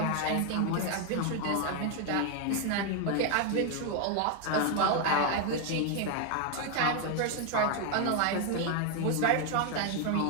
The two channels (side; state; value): both; different; correlation 0.01